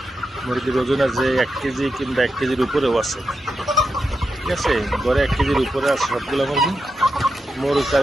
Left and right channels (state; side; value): normal; both; correlation 0.87